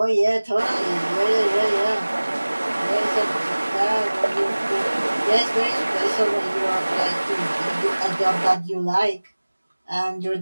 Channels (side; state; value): both; inverted; correlation -1.00